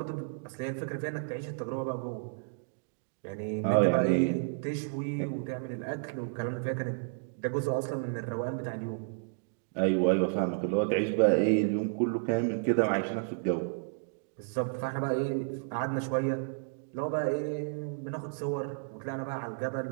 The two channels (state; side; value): silent; left; digital silence